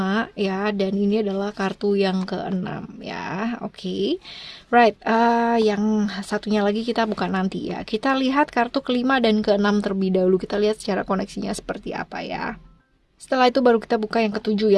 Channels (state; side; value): identical; both; correlation 1.00